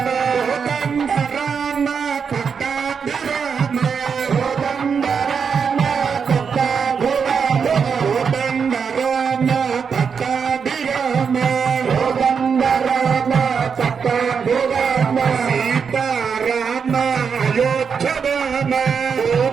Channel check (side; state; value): left; quieter; 6.3 dB